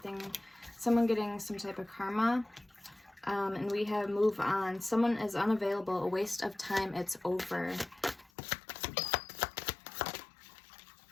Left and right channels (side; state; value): right; drops out; at 8.3 s